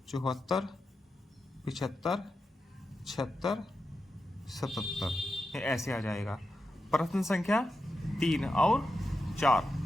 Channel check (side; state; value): both; normal; correlation 0.89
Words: 74, 75, 76, 77। ये ऐसे आ जाएगा। प्रश्न संख्या 3 और 4,